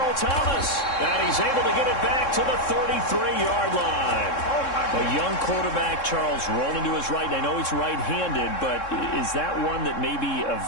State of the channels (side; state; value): right; late; 3.7 ms